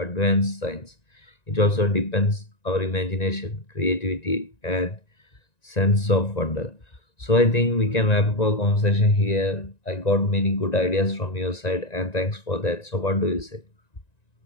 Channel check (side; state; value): right; late; 1.9 ms